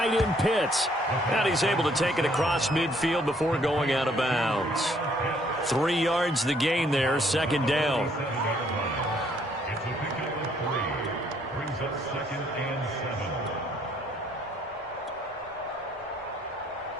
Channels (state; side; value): normal; both; correlation 0.66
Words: end Pitts. And he's able to take it across midfield before going out of bounds. 3 yards the gain there, 2nd down. Brings up 2nd and 7.